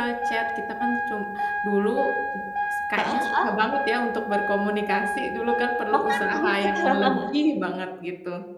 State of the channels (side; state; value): both; identical; correlation 1.00